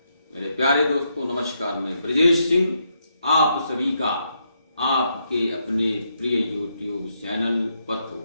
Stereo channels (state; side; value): inverted; both; correlation -0.79